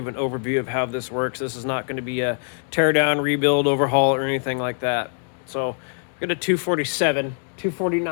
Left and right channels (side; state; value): right; silent; 56 dB below the other